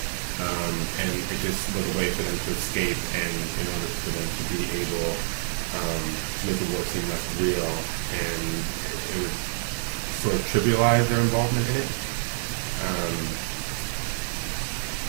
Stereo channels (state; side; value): silent; left; digital silence